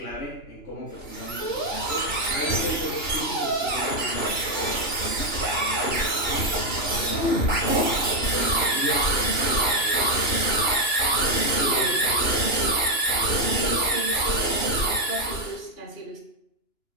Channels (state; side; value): late; right; 2.9 ms